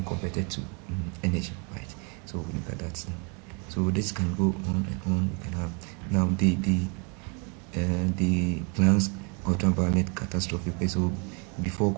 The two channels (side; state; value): left; quieter; 34.3 dB